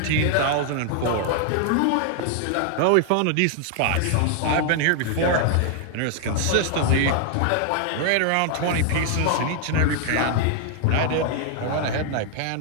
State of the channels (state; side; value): different; both; correlation 0.00